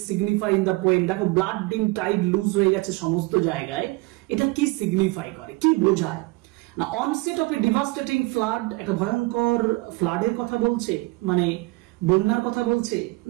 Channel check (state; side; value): quieter; left; 23.6 dB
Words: signify in the poem. দেখো ব্লাড ডিমড টাইড লুজ হয়ে গেছে সমস্ত জায়গায়, এটা কি সিগনিফাই করে, কি বোঝায়? না onset of A devastating flood, একটা ভয়ঙ্কর ফ্লাডের কথা বলছে, মানে বন্যার কথা বলছে